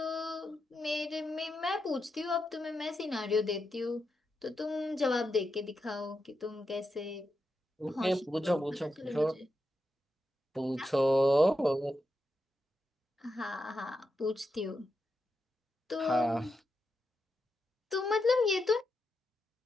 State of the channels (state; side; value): normal; both; correlation 0.86